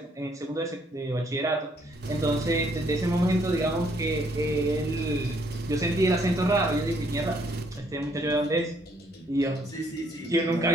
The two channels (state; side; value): normal; both; correlation 0.68